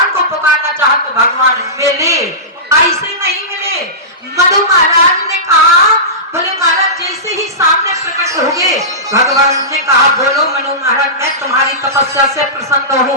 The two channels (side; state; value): both; normal; correlation -0.19